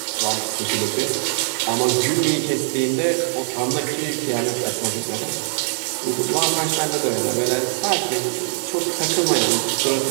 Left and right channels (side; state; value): left; silent; 64 dB below the other